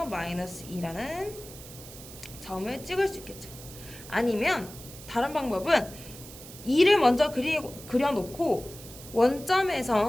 마이너스 2라는 점을 찍을 수 있겠죠. 아니면 다른 방법은 2를 먼저 그려놓고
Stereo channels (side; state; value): right; noise; hiss, 16 dB below the sound